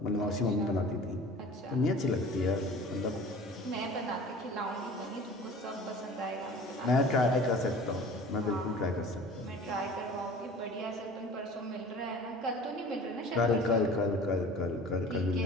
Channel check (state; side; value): normal; both; correlation 0.42